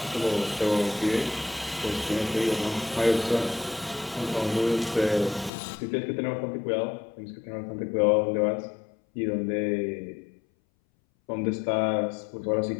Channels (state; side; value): drops out; right; at 5.5 s